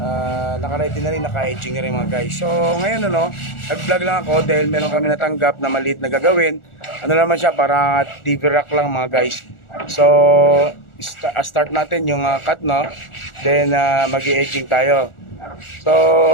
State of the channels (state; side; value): late; right; 1.4 ms